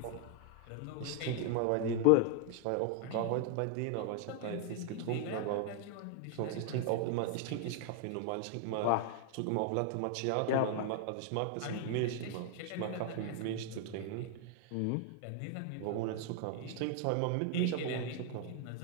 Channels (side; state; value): both; different; correlation -0.01